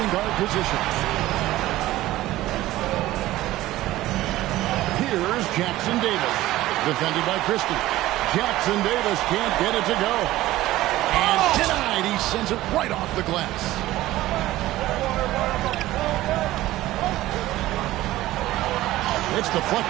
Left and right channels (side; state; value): left; quieter; 16.1 dB